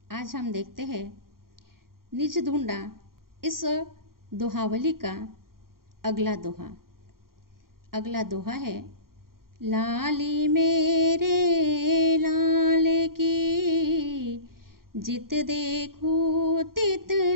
आज हम देखते हैं निज ढूंढा इस दोहावली का अगला दोहा। अगला दोहा है, लाली मेरे लाल की जित देखूं तित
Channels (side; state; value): left; late; 0.92 ms